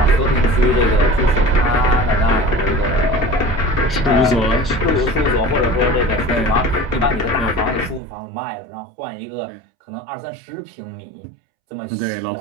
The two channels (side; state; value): left; drops out; at 8.0 s